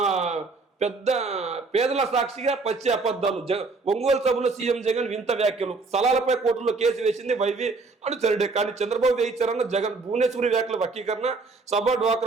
పెద్ద పేదల సాక్షిగా పచ్చి అబద్ధాలు. ఒంగోలు సభలో సీఎం జగన్ వింత వ్యాఖ్యలు. స్థలాలపై కోర్టులో కేసు వేసింది వైవి అనుచరుడే. కానీ చంద్రబాబు వేయించారన్న జగన్. భువనేశ్వరి వ్యాఖ్యల వక్రీకరణ. సభ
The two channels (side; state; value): left; quieter; 3.9 dB